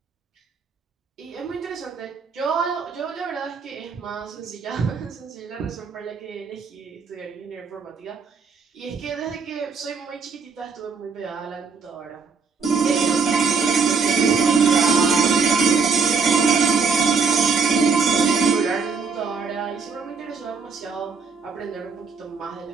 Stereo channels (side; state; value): left; quieter; 5.0 dB